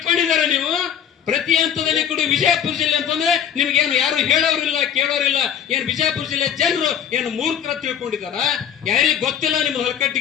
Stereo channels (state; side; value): quieter; right; 8.9 dB